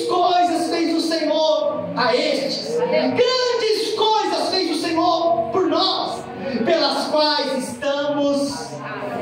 coisas fez o Senhor a estes, grandes coisas fez o Senhor por nós, pelas quais estamos.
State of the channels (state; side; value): identical; both; correlation 1.00